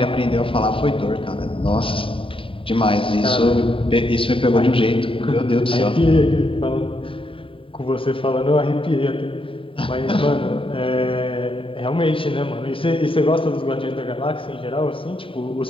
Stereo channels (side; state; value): right; late; 0.25 ms